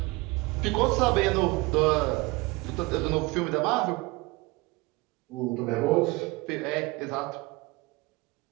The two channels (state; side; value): quieter; left; 23.8 dB